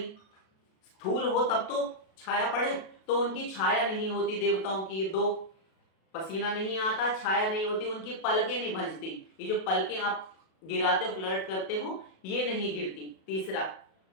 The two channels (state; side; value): late; right; 37 ms